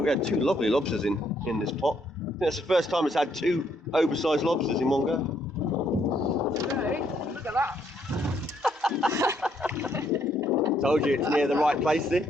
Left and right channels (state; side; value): normal; both; correlation 0.71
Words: we had two lovely lobsters in this pot. I think that's the first time it's had two oversized lobsters in one go. Hey, look at that. Told you it's near the right place,